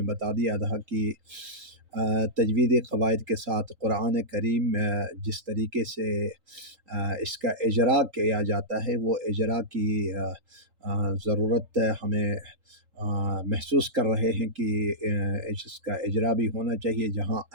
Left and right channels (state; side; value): late; left; 3.8 ms